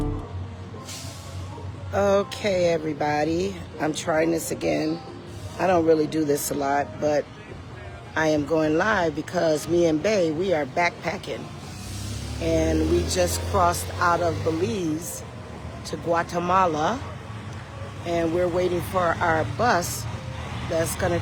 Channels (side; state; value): both; identical; correlation 1.00